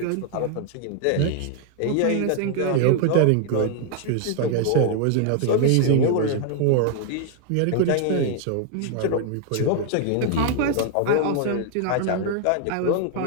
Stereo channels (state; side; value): different; both; correlation 0.00